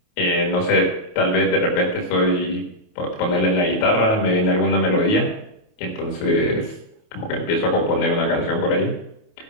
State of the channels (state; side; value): late; right; 28 ms